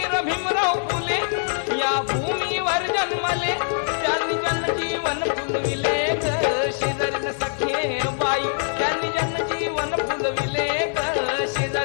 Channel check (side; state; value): right; silent; digital silence